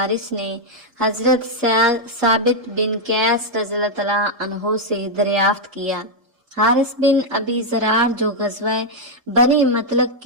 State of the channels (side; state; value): left; late; 3.7 ms